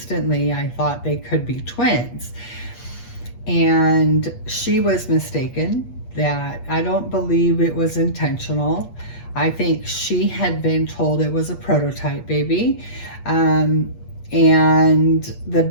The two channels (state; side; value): late; right; 8.4 ms